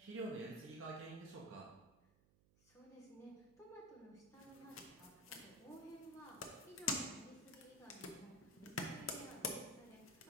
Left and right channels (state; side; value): noise; right; hum, 26 dB below the sound